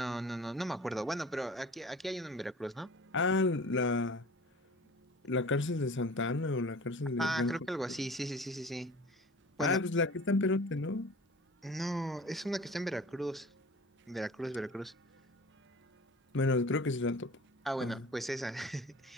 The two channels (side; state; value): both; normal; correlation 0.42